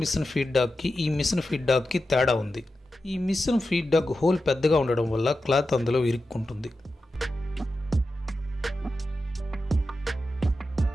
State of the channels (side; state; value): both; normal; correlation 0.91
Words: మిషన్ ఫీడ్బ్యాక్కి ఈ మిషన్ ఫీడ్బ్యాక్కి తేడా ఉంది. ఈ మిషన్ ఫీడ్బ్యాక్ హోల్ పెద్దగా ఉండడం వల్ల క్లాత్ అందులో ఇరుక్కుంటుంది.